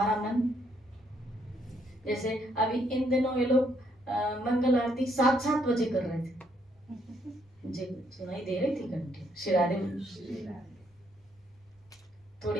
मन, जैसे अभी इन दिनों ये लोग मंगल आरती 7-7 बजे कर रहे थे, मुझे सुनाई दे रही थी घंटे। श्री राधे बोली।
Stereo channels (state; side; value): normal; both; correlation 0.71